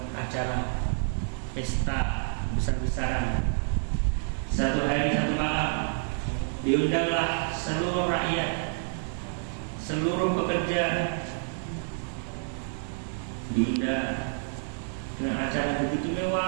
acara pesta besar-besaran. Satu hari satu malam diundanglah seluruh rakyat, seluruh pekerja diundang dengan acara begitu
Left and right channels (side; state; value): left; silent; digital silence